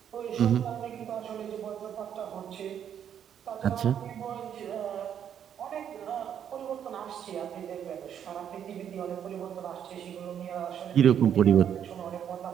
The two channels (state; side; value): quieter; left; 9.1 dB